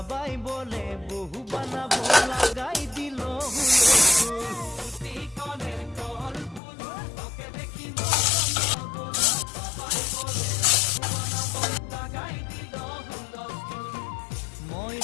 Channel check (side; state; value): right; drops out; at 6.6 s